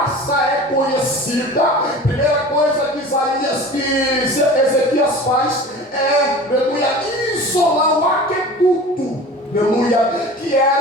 é conhecida, a primeira coisa que Ezequias faz é, aleluia, isolar o aqueduto, aleluia, que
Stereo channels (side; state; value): both; normal; correlation 0.38